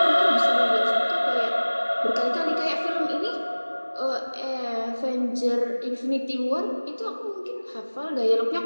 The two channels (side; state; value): both; inverted; correlation -1.00